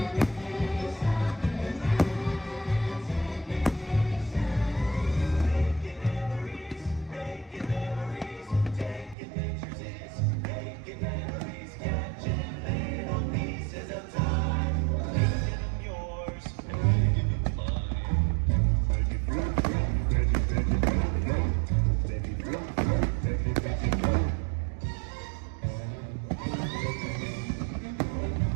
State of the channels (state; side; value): drops out; left; at 9.2 s